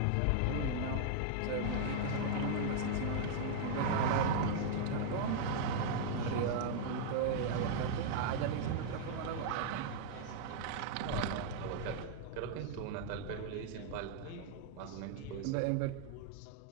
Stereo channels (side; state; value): both; different; correlation -0.01